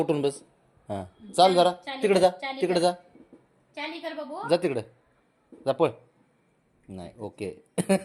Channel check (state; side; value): identical; both; correlation 1.00